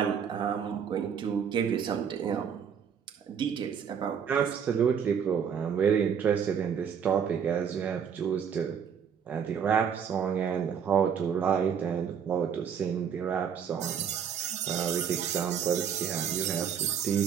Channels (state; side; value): quieter; left; 7.5 dB